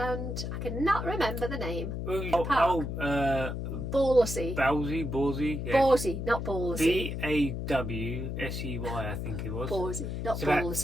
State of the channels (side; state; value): left; noise; hum, 4 dB below the sound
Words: I cannot remember the name. Ballsy. Yeah. Ballsy, not Ballsy. Bawsey, I think it was. Ballsy, not it's about